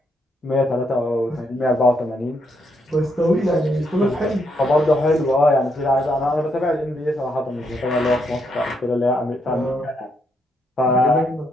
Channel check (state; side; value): normal; both; correlation 0.76